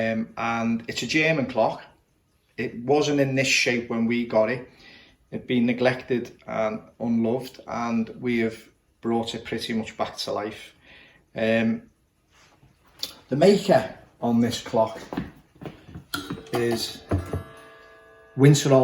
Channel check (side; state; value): both; identical; correlation 1.00